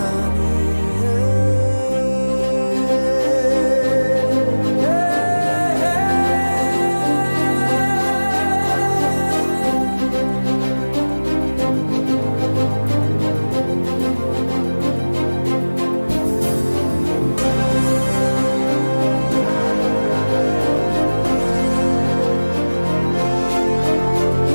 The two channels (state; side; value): inverted; both; correlation -1.00